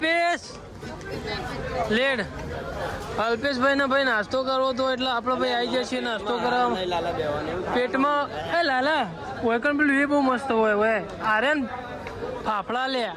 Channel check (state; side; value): identical; both; correlation 1.00